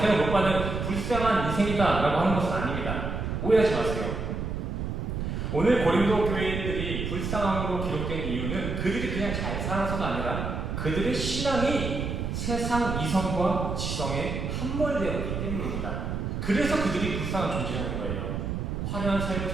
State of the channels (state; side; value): noise; right; rumble, 3 dB below the sound